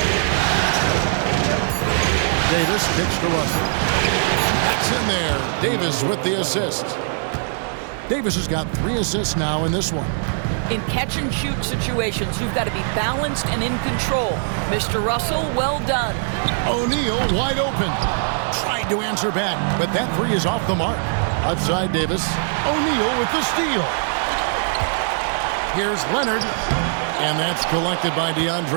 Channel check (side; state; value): left; silent; 65 dB below the other